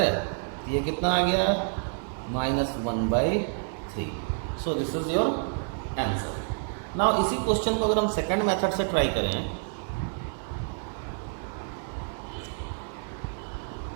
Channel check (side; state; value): left; silent; 56 dB below the other